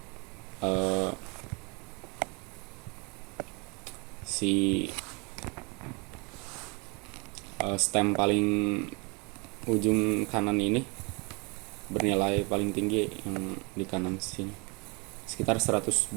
si stem paling ujung kanan ini bernilai paling tinggi yang di kanan sini sekitar 120.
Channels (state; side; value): quieter; left; 30.1 dB